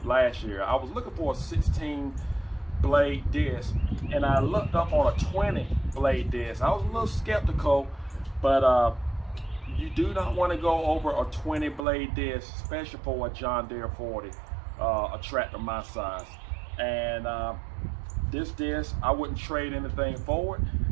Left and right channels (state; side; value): drops out; left; at 11.9 s